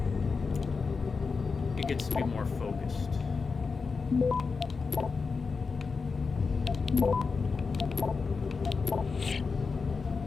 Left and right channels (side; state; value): right; quieter; 4.8 dB